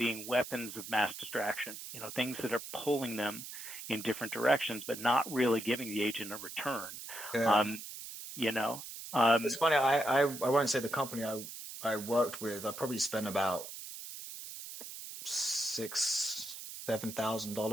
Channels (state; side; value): noise; right; hiss, 10 dB below the sound